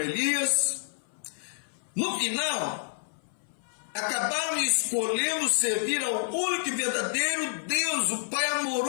no final, acabaram escolhendo servir ao único e verdadeiro Deus, o Pai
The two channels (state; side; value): silent; right; 57 dB below the other